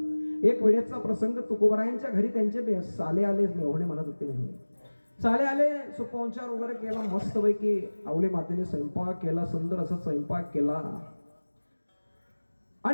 एक वेळेचा प्रसंग, तुकोबारायांच्या घरी त्यांचे साले आले, मेहुणे म्हणत होते. मेहुणे साले आले, सुपवंचार वगैरे केला, मस्तपैकी आवले मातेने स्वयंपाक केला, सुंदर असा स्वयंपाक केला.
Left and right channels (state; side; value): inverted; both; correlation -1.00